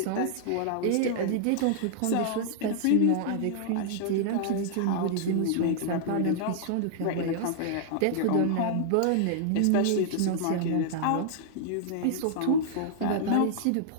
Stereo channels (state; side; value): different; both; correlation -0.01